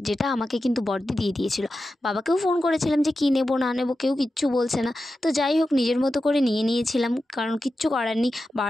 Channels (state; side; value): normal; both; correlation 0.91